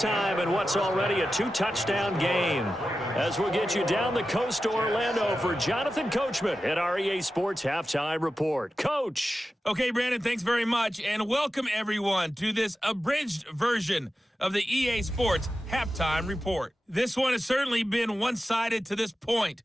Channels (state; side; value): normal; both; correlation 0.92